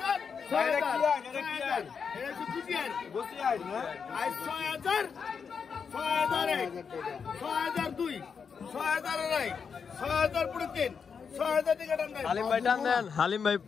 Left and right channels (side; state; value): right; quieter; 6.2 dB